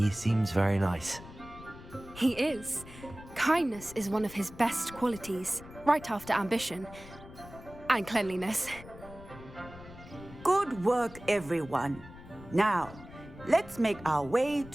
seems very nice. He is. Kindness is one of his best qualities, right after ambition. And cleanliness. Good work, everyone. Now, let's make our way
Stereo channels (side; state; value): left; noise; rumble, 17 dB below the sound